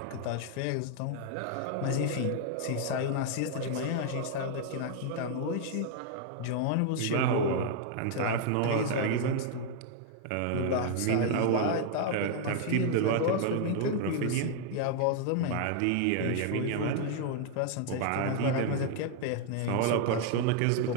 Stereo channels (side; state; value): both; different; correlation 0.00